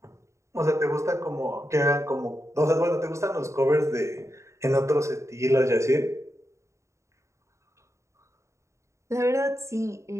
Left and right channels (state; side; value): late; left; 0.14 ms